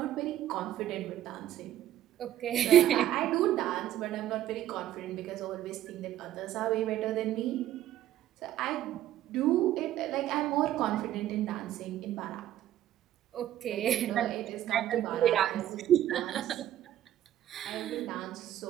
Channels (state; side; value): quieter; left; 12.4 dB